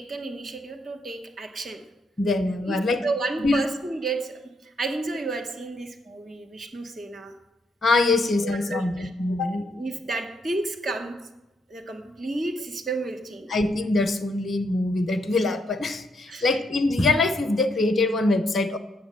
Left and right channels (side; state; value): both; normal; correlation 0.76